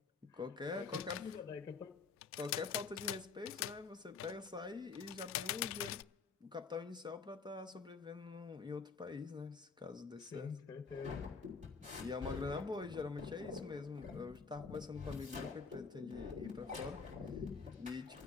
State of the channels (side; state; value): right; quieter; 5.2 dB